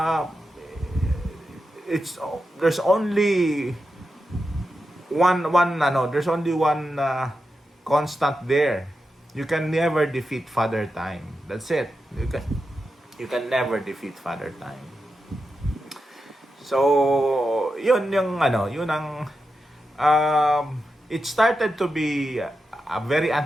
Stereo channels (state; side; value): normal; both; correlation 0.89